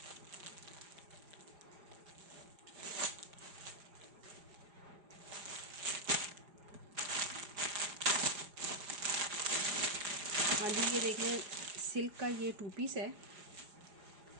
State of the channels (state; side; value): late; left; 4.9 ms